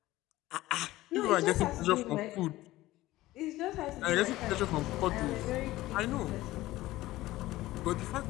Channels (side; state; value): right; quieter; 17.0 dB